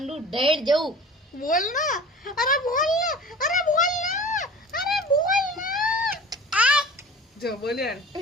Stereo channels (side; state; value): both; normal; correlation 0.40